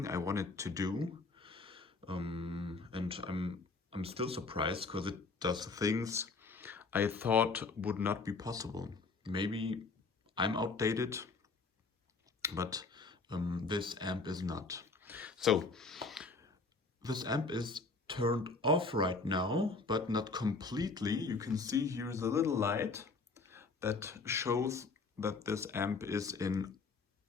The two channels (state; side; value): quieter; right; 4.0 dB